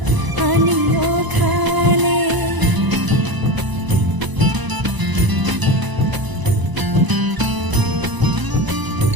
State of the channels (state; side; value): late; left; 1.0 ms